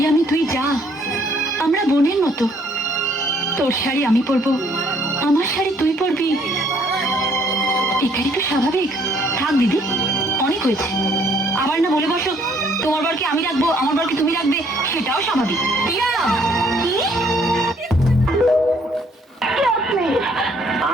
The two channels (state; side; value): normal; both; correlation 0.64